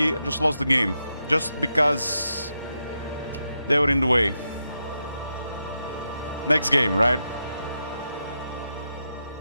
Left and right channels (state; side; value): inverted; both; correlation -0.85